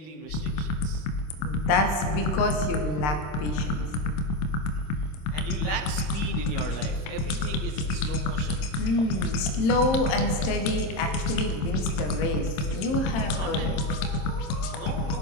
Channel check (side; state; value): right; late; 27 ms